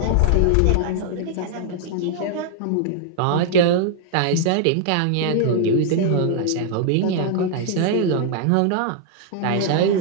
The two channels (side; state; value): both; different; correlation 0.00